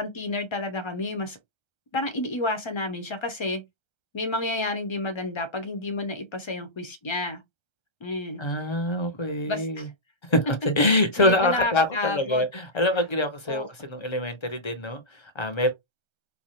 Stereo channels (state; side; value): late; right; 1.3 ms